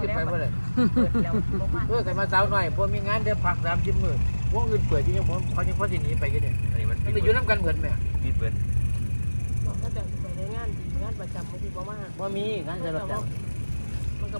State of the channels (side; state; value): both; inverted; correlation -1.00